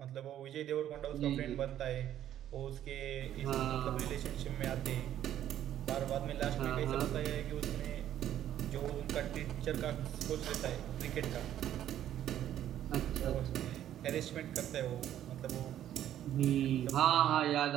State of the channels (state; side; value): quieter; left; 11.5 dB